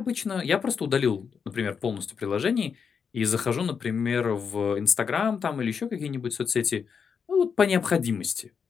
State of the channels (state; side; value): quieter; right; 6.3 dB